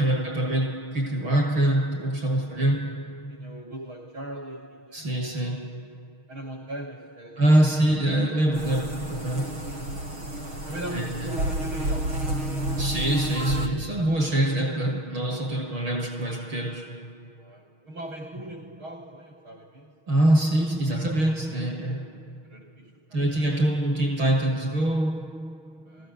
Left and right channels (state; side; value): late; left; 6.4 ms